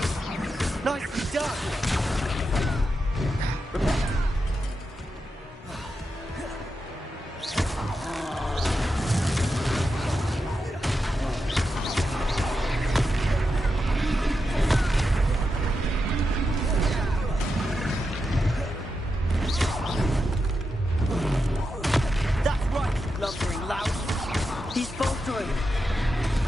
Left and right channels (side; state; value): both; normal; correlation 0.88